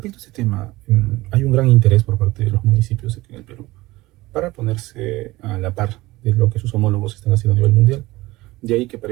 a este tema, hay un gran interés por parte de los municipios aquí en el Perú para ponerse a la par de lo que sus homólogos están haciendo a nivel mundial. De ahí que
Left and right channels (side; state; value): left; quieter; 19.4 dB